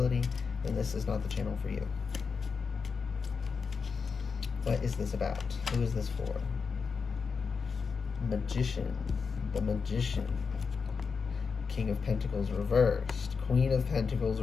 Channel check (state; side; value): quieter; right; 5.4 dB